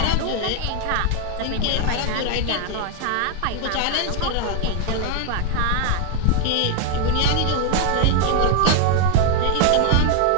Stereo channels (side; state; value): both; different; correlation 0.00